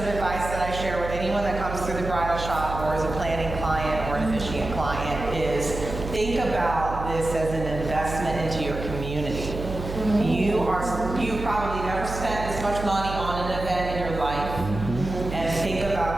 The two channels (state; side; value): noise; right; hum, 7 dB below the sound